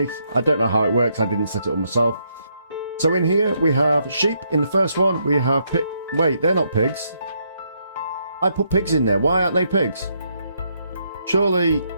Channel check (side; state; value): both; inverted; correlation -0.75